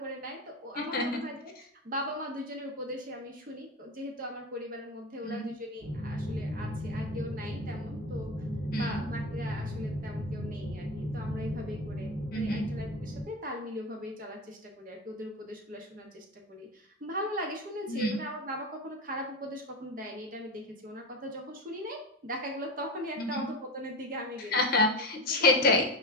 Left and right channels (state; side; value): normal; both; correlation 0.24